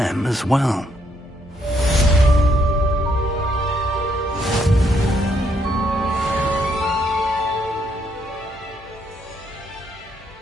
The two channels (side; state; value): both; normal; correlation 0.73